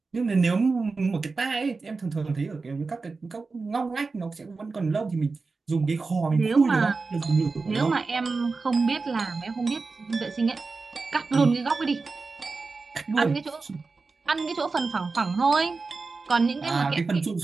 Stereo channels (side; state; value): left; quieter; 4.1 dB